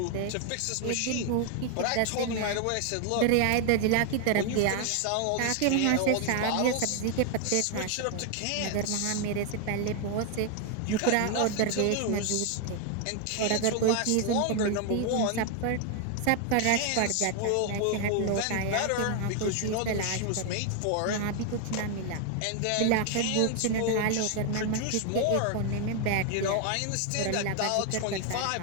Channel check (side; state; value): both; different; correlation 0.01